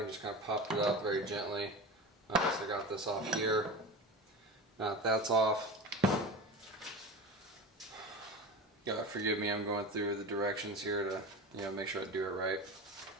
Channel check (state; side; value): normal; both; correlation 0.29